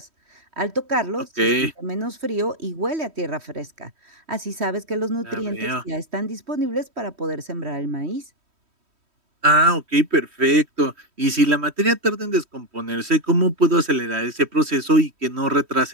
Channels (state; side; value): late; left; 3.1 ms